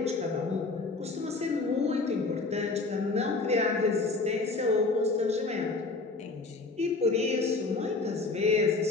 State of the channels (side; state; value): right; quieter; 3.8 dB